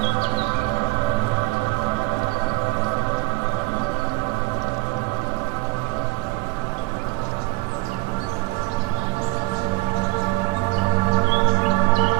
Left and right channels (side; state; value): left; quieter; 22.9 dB